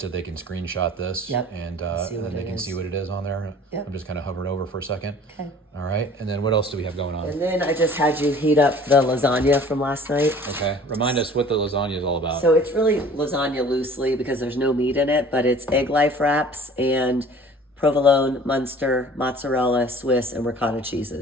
they can screenshot this. Yep. And See what then they it can is. see what it is on there. Yep. I'm just kind of hovering over for a second. Okay. All right, and then what else do we have going on? And then I just had you heat up the lasagna from last night. Okay, remind us what the lasagna is all about. So it's really lasagna loosely because there's no meat in it, but it's egg life wraps and provolone, Munster, mozzarella, Swiss, and ricotta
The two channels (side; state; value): both; normal; correlation 0.48